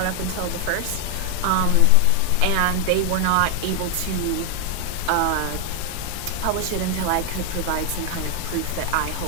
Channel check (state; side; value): different; both; correlation 0.00